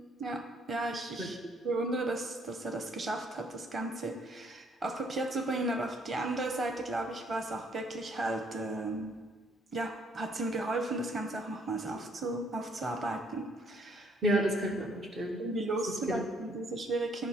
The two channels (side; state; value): both; normal; correlation 0.66